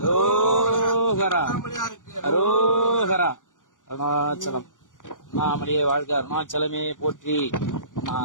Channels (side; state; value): right; late; 0.88 ms